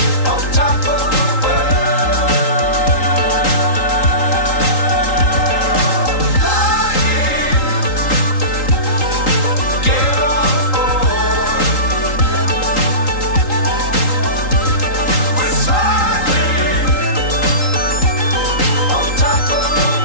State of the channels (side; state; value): right; late; 3.8 ms